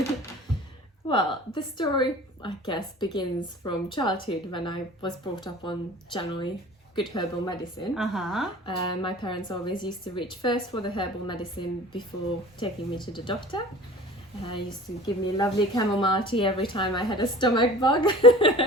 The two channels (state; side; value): normal; both; correlation 0.42